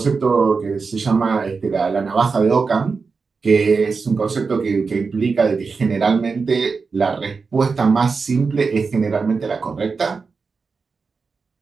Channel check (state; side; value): quieter; left; 4.8 dB